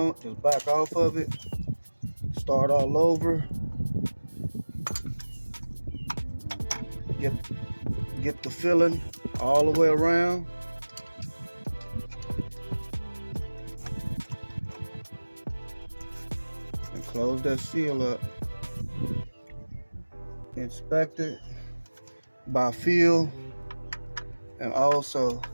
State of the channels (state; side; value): inverted; both; correlation -1.00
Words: just back off of it. Start all over. Get the filling all the way around. And close that seal up. Inspect it by feel, and also,